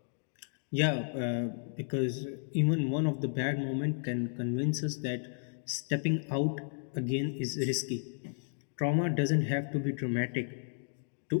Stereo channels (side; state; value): right; silent; digital silence